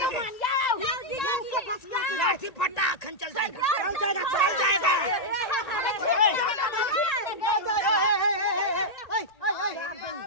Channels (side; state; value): right; late; 1.8 ms